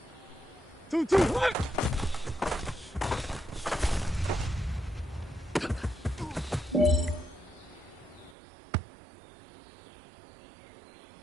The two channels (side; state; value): left; drops out; at 8.3 s